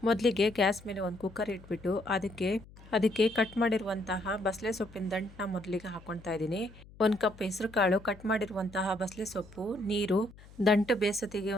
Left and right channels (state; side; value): noise; left; hum, 21 dB below the sound